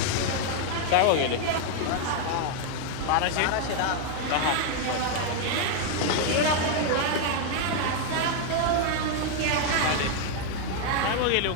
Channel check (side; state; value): both; different; correlation 0.00